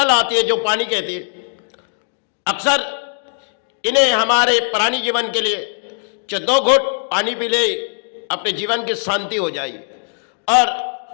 आती है जो पानी कहती है, अक्सर इन्हें हमारे प्राणी जीवन के लिए जो 2 घूंट पानी पी ले अपने जीवन की शांति हो जाएगी। और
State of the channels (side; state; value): right; silent; digital silence